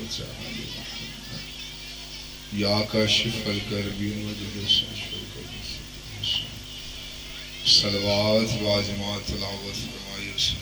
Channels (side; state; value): both; identical; correlation 1.00